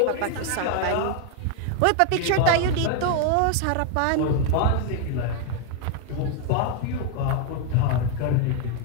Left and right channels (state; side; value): different; both; correlation 0.00